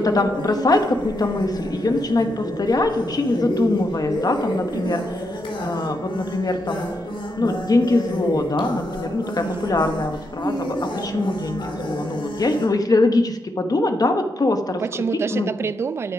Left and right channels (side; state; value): both; normal; correlation 0.81